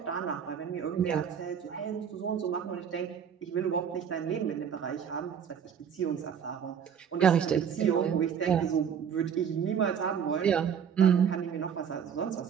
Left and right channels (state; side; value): quieter; left; 7.8 dB